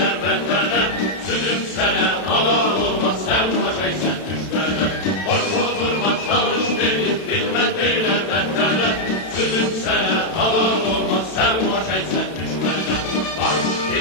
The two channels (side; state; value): right; late; 32 ms